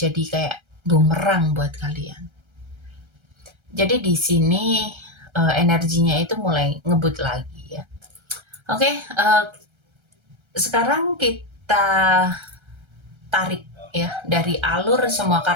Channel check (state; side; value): late; left; 1.3 ms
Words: kayak bumerang buat kalian. Jadi di sini energinya itu mulai ngebut lagi ya. Oke, sekarang kita tarik ya dari alur semua